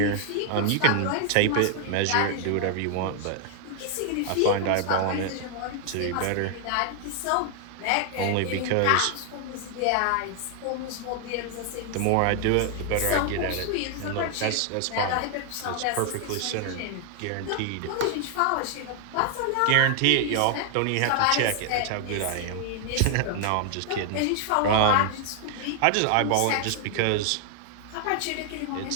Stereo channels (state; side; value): different; both; correlation 0.00